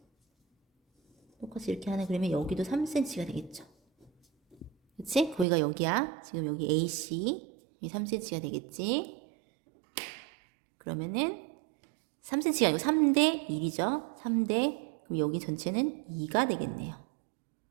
똑같이 이렇게 하나 그리면 여기도 3cm가 되겠죠. 그치? 거기가 여기야. 지금 여기 AC 이 3cm가 되겠지. 그러면은 3cm가 아니고 3대 1이죠. 3대, 그럼 여기 전체는 2가 되겠네요.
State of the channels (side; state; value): left; drops out; at 5.5 s